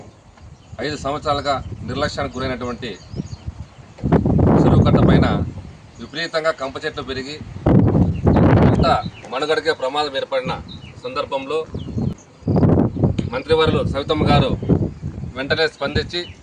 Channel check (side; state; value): both; identical; correlation 1.00